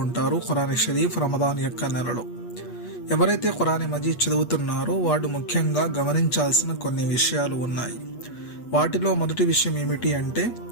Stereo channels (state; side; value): late; right; 8.4 ms